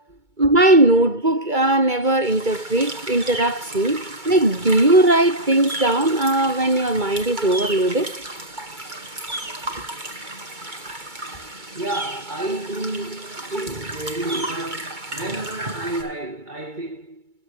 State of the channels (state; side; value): late; left; 2.2 ms